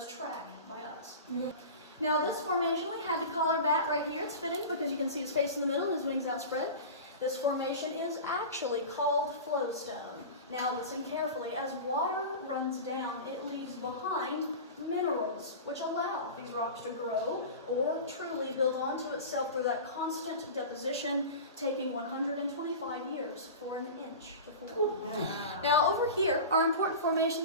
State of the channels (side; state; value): both; inverted; correlation -0.31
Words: track by us. Now this formation, we had to call our bat right here. It's fitting because you can see his face in the middle and his wings outspread. This formation is actually called flowstone. Now listen carefully. As water runs down, it leaves behind minerals, which allow these rocks to grow or truly build onto itself through that constant deposition, taking 125 years for an inch to form. Now over here are important